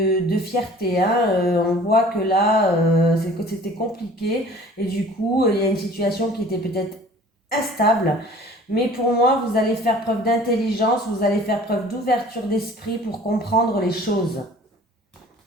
fierté. Hein. On voit que là, c'était compliqué et du coup, il y a une situation qui était peut-être instable. Mais pour moi, vous allez faire preuve d'intelligence, vous allez faire preuve d'ouverture d'esprit pour comprendre les choses.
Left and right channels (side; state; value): both; normal; correlation 0.48